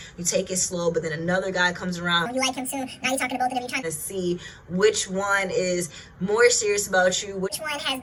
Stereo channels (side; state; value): both; identical; correlation 1.00